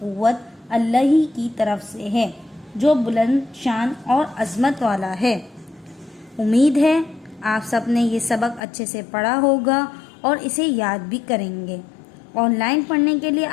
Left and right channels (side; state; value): right; drops out; at 8.6 s